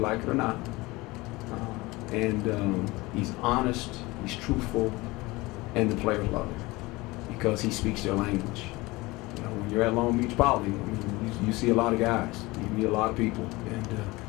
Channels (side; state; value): right; quieter; 21.8 dB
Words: it or not. He's honest, he's truthful, and the players love him because he speaks their language. You know, when you're at Long Beach Poly, I mean, you see a lot of guys, you meet a lot of people,